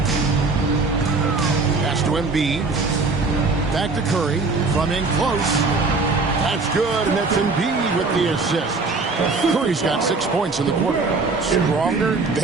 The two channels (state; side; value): quieter; left; 3.9 dB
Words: Pass to Embiid. Back to Curry. From in close. That's good, and that's Embiid with the assist. Curry's got 6 points in the quarter. Stronger